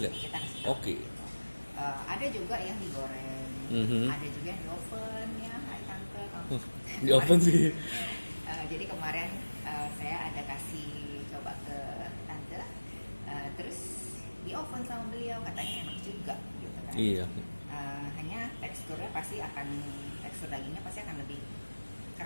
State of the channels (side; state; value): both; inverted; correlation -1.00